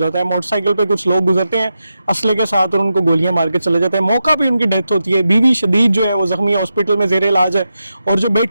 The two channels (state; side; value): inverted; both; correlation -0.89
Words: है। मोटरसाइकिल पे कुछ लोग गुजरते हैं असले के साथ और उनको गोलियां मार के चले जाते हैं। मौका पे उनकी डेथ होती है। बीवी शदीद जो है वो जख्मी हॉस्पिटल में जेर इलाज है और जो